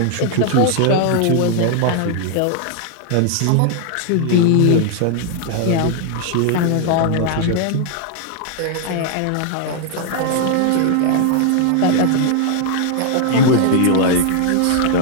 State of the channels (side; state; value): both; different; correlation 0.00